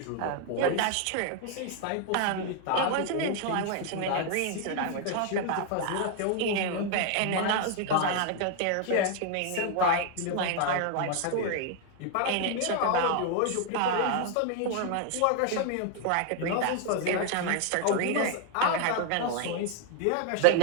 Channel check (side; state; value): both; different; correlation 0.00